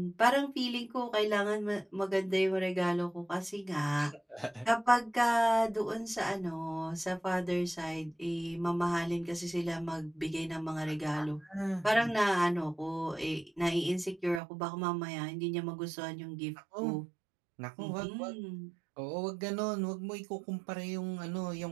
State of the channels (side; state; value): left; drops out; at 14.4 s